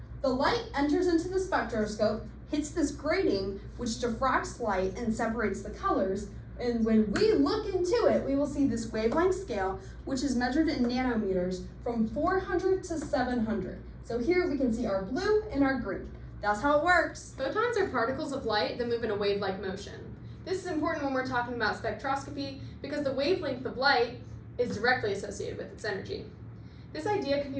The light enters into the spectroscope, hits this grating, which diffracts light and separates the colors. And when we look into it, we will see this wavelength scale, which is measured in nanometers from 400 to 700. So here we can see our blue and our green. That's how it works. Photons are particles of light that move in a wave-like motion. This is important when we're talking about spectroscopy because the wavelength of light is directly associated with its energy. This idea can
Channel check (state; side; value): identical; both; correlation 1.00